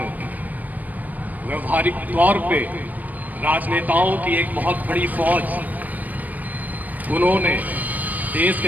व्यवहारिक तौर पे राजनेताओं की एक बहुत बड़ी फौज उन्होंने देश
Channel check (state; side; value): late; left; 0.081 ms